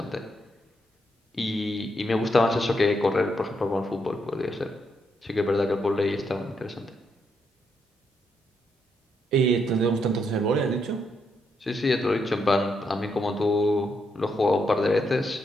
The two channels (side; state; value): both; normal; correlation 0.79